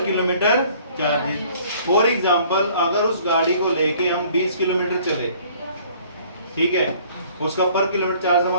किलोमीटर चार्जेस। फॉर एग्जांपल अगर उस गाड़ी को लेके हम 20 किलोमीटर चले, ठीक है, उसका पर किलोमीटर चार्ज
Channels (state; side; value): inverted; both; correlation -0.56